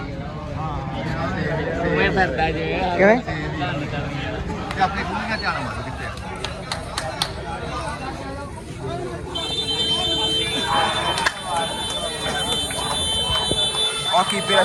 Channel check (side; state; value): both; identical; correlation 1.00